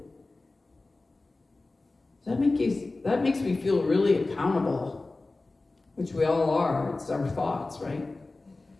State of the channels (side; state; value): right; quieter; 3.2 dB